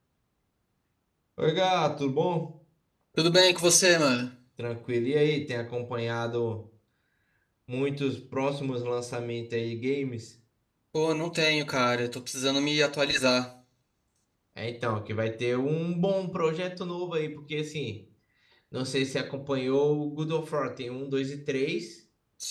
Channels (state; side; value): identical; both; correlation 1.00